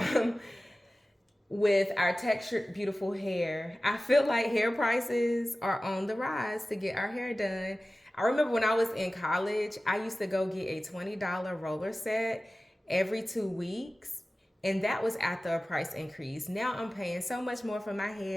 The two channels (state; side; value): normal; both; correlation 0.96